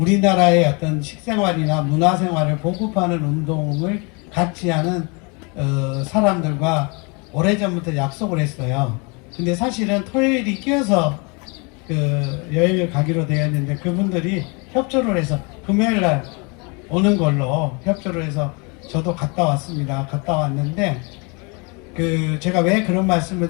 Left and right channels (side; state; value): right; quieter; 31.4 dB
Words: 어떤 식생활이나 문화생활을 보급하는 운동을 같이 하는 사람들과 오래전부터 약속을 했어요. 근데 사실은 토요일이 끼어서 여행을 가기로 되었는데 그분들이 협조를 해서 금요일날 오는 걸로 협조를 해서 저도 갔다 왔습니다. 갔다 왔는데 제가 왜 그런 말씀을